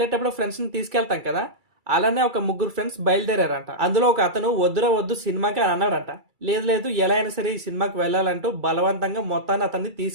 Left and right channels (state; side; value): late; left; 2.3 ms